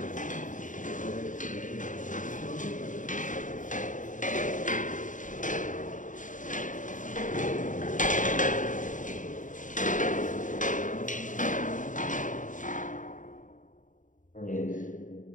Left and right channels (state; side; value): late; right; 0.37 ms